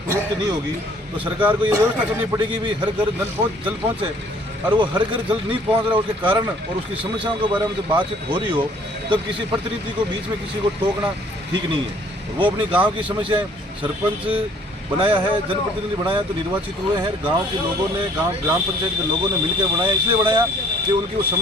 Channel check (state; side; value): normal; both; correlation 0.58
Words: नहीं होगी, तो सरकार को ये व्यवस्था करनी पड़ेगी भी हर घर जल पहुँचे। और वो हर घर जल नहीं पहुँच रहा, उसके कारण और उसकी समस्याओं के बारे में जब बातचीत हो रही हो तब किसी प्रतिनिधि को बीच में किसी को टोकना ठीक नहीं है। वो अपनी गाँव की समस्याएँ सरपंच बनाया है, जनप्रतिनिधि बनाया तो निर्वाचित हुए हैं, गांव के लोगों ने, ग्राम पंचायत के लोगों ने मिलकर बनाया, इसलिए बनाया कि उनकी उस